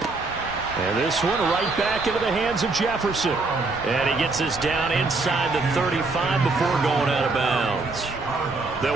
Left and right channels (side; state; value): left; quieter; 3.6 dB